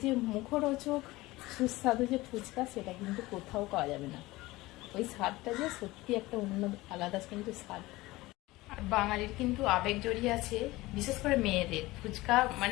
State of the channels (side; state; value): right; quieter; 19.6 dB